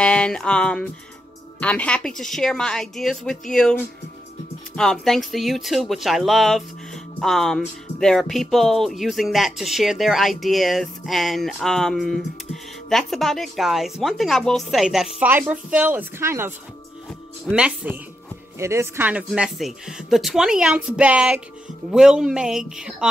I'm happy to share my ideas with you. Thanks to YouTube, which I love. There are people using that to share their ideas, and that's about it, guys. One thing I will say, that fiber fill is kind of messy. It is kind of messy. The 20-ounce bag will make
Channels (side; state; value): both; normal; correlation 0.84